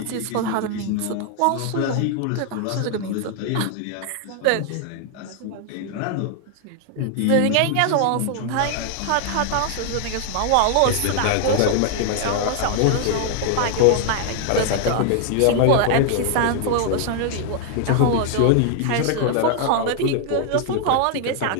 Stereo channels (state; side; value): different; both; correlation 0.00